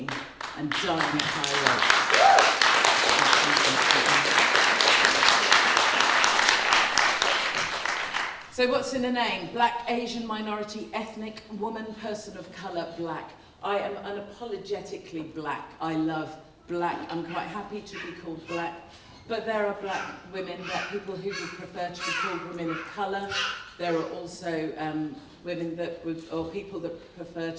and dying at high rates. So what's in a name? Black, Asian, minority, ethnic, woman, person of colour, black. I am unapologetically black. I love black. I'm quite happy to be called black. But there are black women, black people who would prefer to be called women of colour. There are also women that would, or people that prefer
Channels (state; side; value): identical; both; correlation 1.00